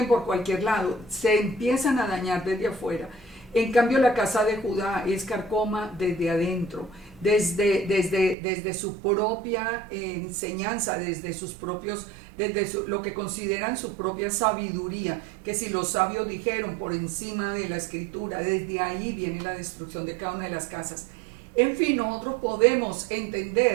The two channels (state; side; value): drops out; left; at 8.3 s